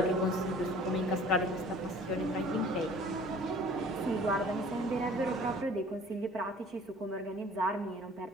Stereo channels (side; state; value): both; normal; correlation 0.50